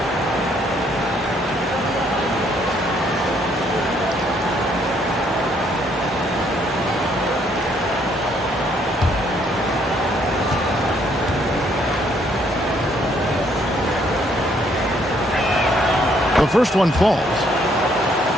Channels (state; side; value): normal; both; correlation 0.68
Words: The first one falls.